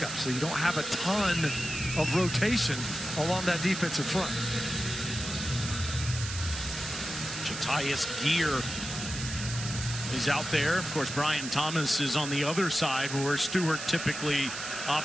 so you don't have a ton of rotation along that defensive front. Jatius Geer is out there. Of course, Brian Thomas is on the other side where Stewart typically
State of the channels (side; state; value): right; noise; hiss, 7 dB below the sound